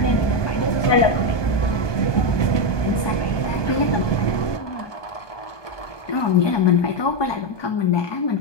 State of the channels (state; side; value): late; right; 1.2 ms